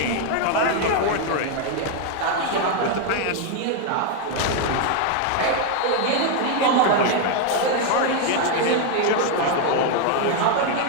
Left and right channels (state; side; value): different; both; correlation 0.01